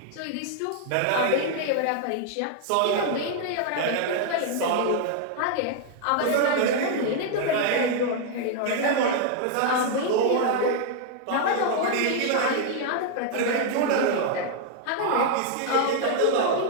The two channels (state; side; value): different; both; correlation 0.00